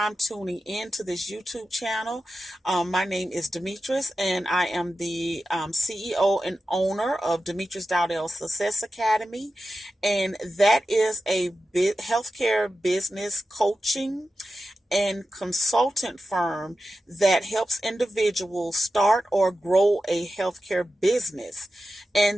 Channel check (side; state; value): both; normal; correlation 0.92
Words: tuning in to this YouTube channel, my name is Demetrius, and I am the CEO and owner of Demetrius Dowdell Success Academy, and that is a healthcare business coaching and consultant firm that helps individuals start or grow a healthcare business.